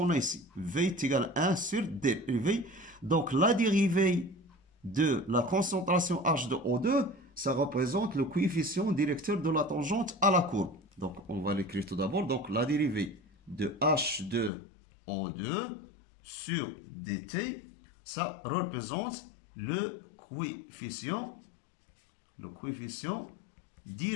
a ici. V est égal à 1 sur dérivée. Donc, la dérivée de la concentration H2O2, ça représente le coefficient directeur de la tangente à la courbe. Donc, on va l'écrire tout d'abord. Donc, la dérivée de H2O2 sur dt, ça représente le coefficient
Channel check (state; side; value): drops out; right; at 14.5 s